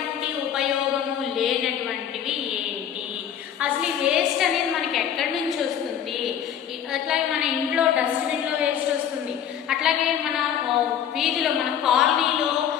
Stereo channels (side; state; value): right; quieter; 9.3 dB